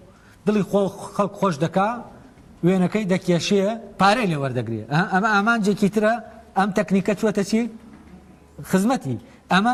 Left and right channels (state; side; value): identical; both; correlation 1.00